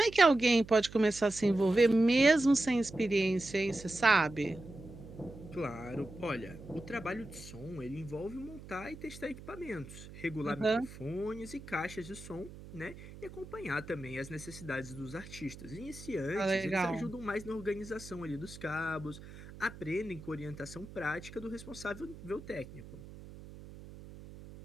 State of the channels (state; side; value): noise; right; hum, 16 dB below the sound